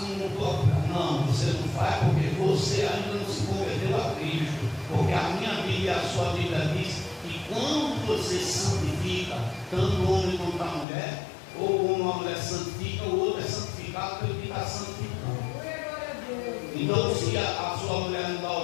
não estou. Não, você não faz porque você ainda não se converteu a Cristo. Porque a minha Bíblia e a sua Bíblia diz que quando você santifica, tanto o homem quanto a mulher, ou uma mulher santifica, o outro é santificado pelo que está santificando. Então, se a sua mulher não dá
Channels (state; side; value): drops out; right; at 10.9 s